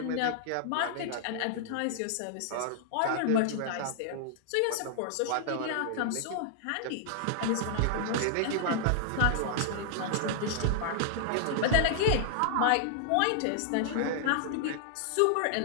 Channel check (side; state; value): both; different; correlation -0.01